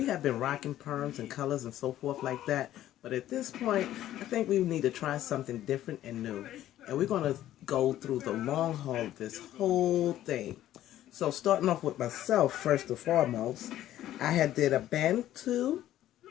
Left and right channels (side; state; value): right; quieter; 13.0 dB